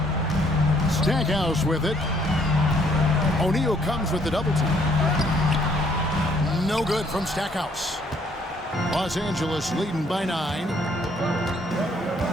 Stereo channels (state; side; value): normal; both; correlation 0.66